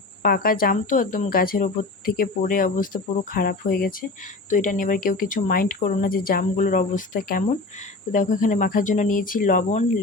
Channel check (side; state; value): right; quieter; 3.4 dB